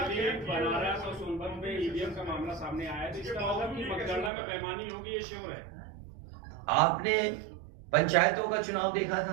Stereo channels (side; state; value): left; drops out; at 4.3 s